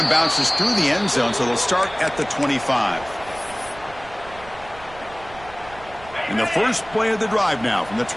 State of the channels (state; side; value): noise; right; rumble, 19 dB below the sound